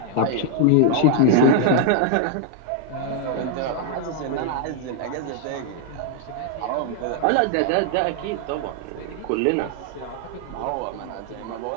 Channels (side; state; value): both; different; correlation 0.00